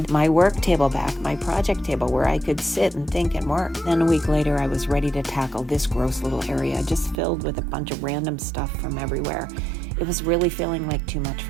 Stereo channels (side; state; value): left; drops out; at 7.2 s